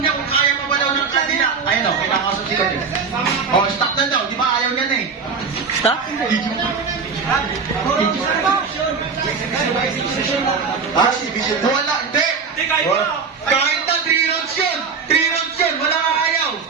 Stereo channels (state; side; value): quieter; left; 5.4 dB